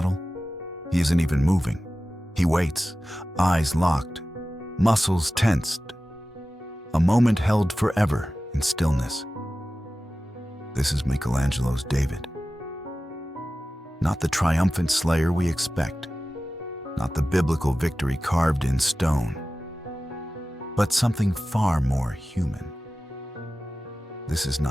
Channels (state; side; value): normal; both; correlation 0.95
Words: He isn't even moving. He waits, eyes locked, muscles tensed. A moment held forever in stillness. This is Michelangelo's David. Not the triumphant slayer we expect, not the biblical victory carved in stone, but something far more human. This is